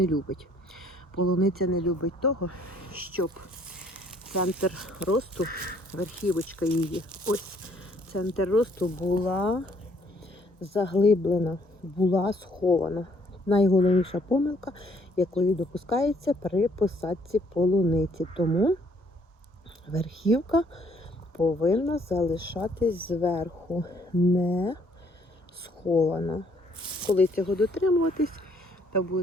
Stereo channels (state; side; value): normal; both; correlation 0.64